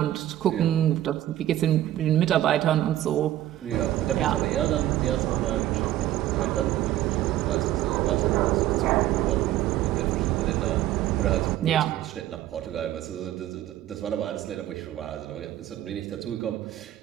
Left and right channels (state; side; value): quieter; left; 13.4 dB